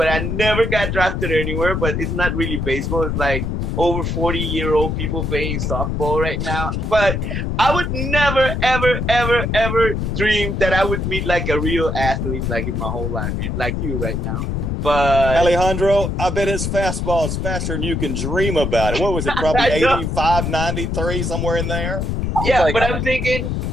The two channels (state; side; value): noise; left; rumble, 1 dB below the sound